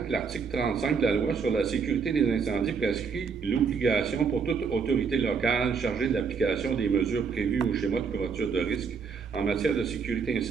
que l'article 35 de la loi sur la sécurité des incendies prescrit l'obligation pour toute autorité locale chargée de l'application des mesures prévues au schéma de couverture de risque en matière de sécurité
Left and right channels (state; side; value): quieter; left; 5.6 dB